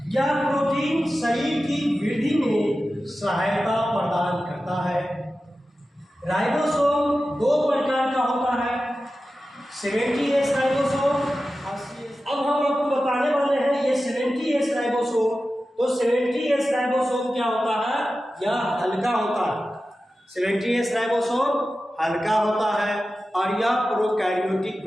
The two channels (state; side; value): normal; both; correlation 0.94